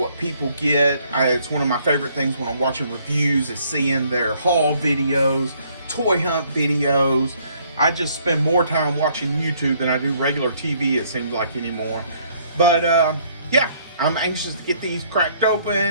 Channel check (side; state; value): both; inverted; correlation -0.64